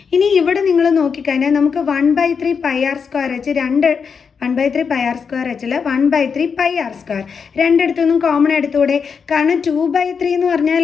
ഇനി ഇവിടെ നിങ്ങൾ നോക്കിക്കഴിഞ്ഞാൽ നമുക്ക് 1 by 3 pi r square h 1 by 3 pi r square h 1 by 3 pi r square രണ്ടിടത്തുനിന്നും common എടുത്തൂടെ കാരണം 2 by 3 എന്ന്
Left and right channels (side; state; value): right; quieter; 6.1 dB